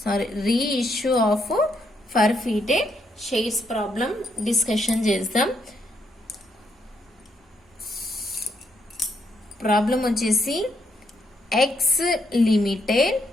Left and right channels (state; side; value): normal; both; correlation 0.76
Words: reissue of forfeited shares problem discussion చేద్దాం. Problem వచ్చేసి X Limited